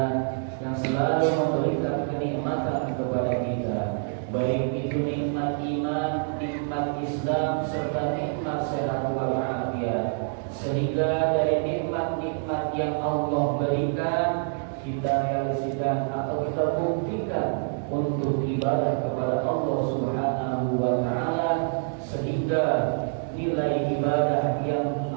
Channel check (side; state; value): left; silent; 61 dB below the other